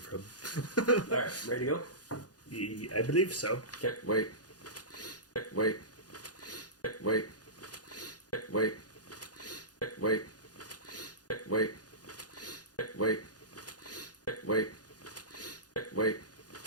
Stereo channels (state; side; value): late; right; 0.68 ms